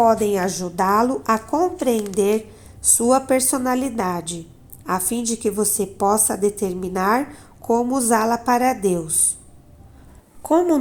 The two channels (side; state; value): both; identical; correlation 1.00